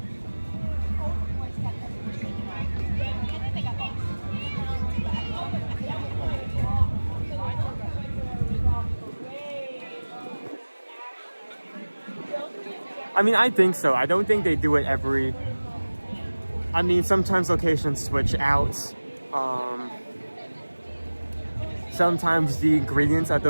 I mean, I think so. I don't think they do it every... I mean, sometimes locations switch out. Sometimes the ingredients at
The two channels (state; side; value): inverted; both; correlation -1.00